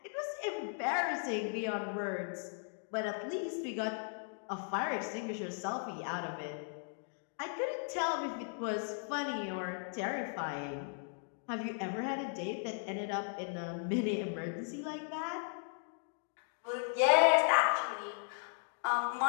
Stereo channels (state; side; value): silent; right; 53 dB below the other